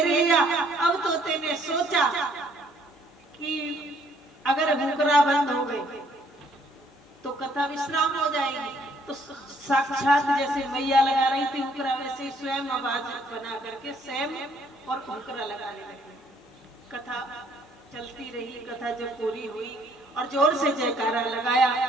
लिया। अब तोते ने सोचा कि अगर हुकरा बंद हो गई तो कथा विश्राम हो जाएगी। तो साक्षात जैसे मैया लगा रही थी हुकरा, वैसे स्वयं आवाज बना करके स्वयं और हुकरा लगाने लगी। कथा चलती रही। कथा जब पूरी हुई और जोर से जयकारा लगाया,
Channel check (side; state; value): both; normal; correlation 0.64